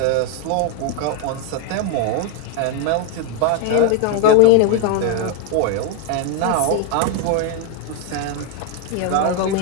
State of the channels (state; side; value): different; both; correlation 0.02